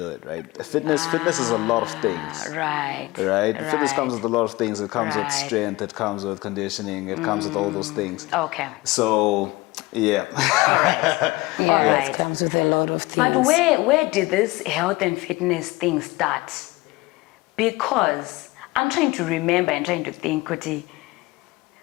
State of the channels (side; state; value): right; quieter; 21.0 dB